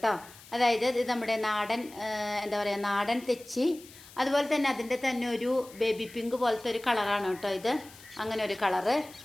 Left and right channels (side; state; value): left; noise; hiss, 20 dB below the sound